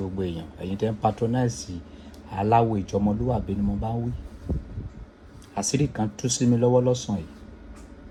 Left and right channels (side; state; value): both; identical; correlation 1.00